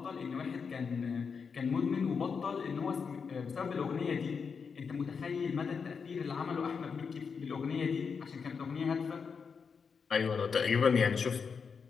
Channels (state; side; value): quieter; right; 5.8 dB